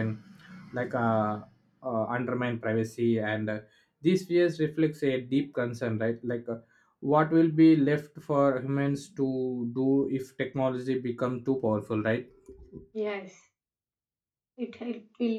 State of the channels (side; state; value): both; identical; correlation 1.00